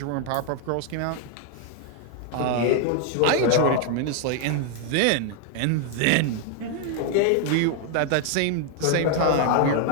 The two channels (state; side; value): different; both; correlation 0.00